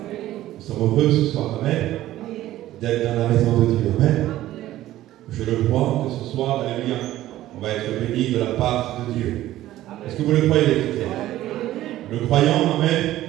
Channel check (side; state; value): left; quieter; 14.5 dB